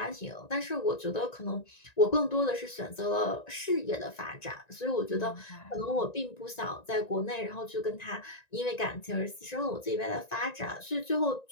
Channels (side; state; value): right; late; 1.9 ms